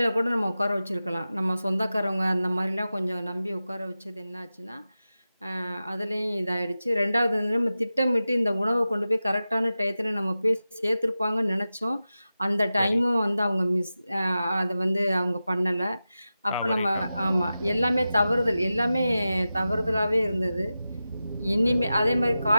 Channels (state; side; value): inverted; both; correlation -0.93